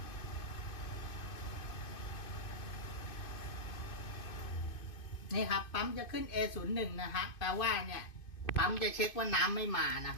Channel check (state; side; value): late; right; 2.5 ms